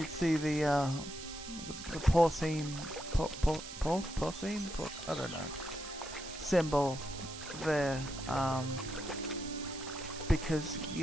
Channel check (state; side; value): noise; right; hiss, 11 dB below the sound